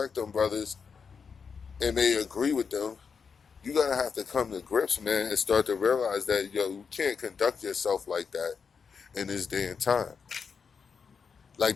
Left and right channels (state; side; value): quieter; right; 5.9 dB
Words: them brothers and may agree with them. You gotta have to come to grips, man, and start to realize that, you can't conduct yourself like that in this day and time.